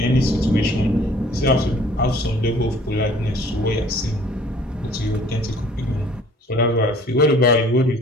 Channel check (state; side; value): normal; both; correlation 0.54